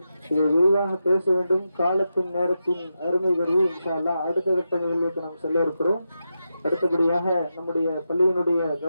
இதை விரிவாக பேச வேண்டும். காலத்தின் நேரத்தின் அருமை கருவி இன்ஷா அல்லாஹ் அடுத்த கட்ட நிகழ்வுக்கு நாம் செல்ல இருக்கிறோம். அடுத்தபடியாக நம்முடைய பள்ளியினுடைய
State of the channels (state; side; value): inverted; both; correlation -0.88